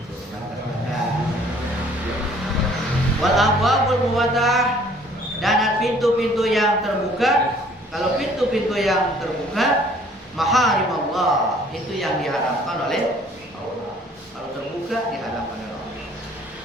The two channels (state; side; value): normal; both; correlation 0.57